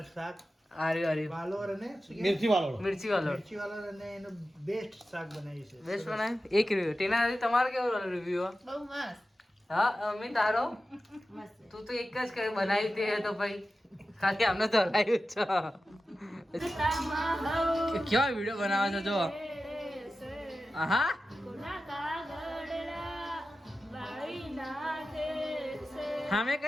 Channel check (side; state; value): both; normal; correlation 0.93